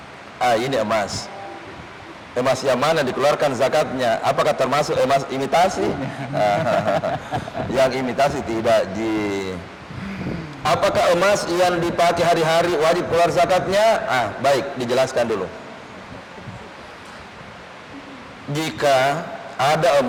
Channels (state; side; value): identical; both; correlation 1.00